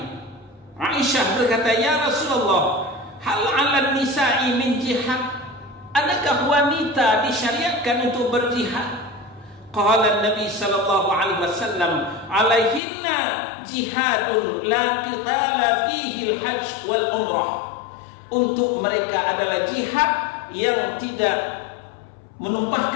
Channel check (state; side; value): drops out; right; at 12.8 s